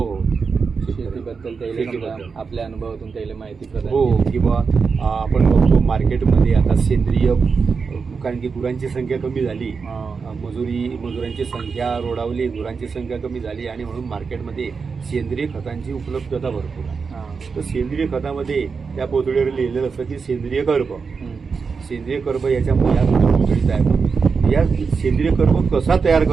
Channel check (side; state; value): left; quieter; 5.2 dB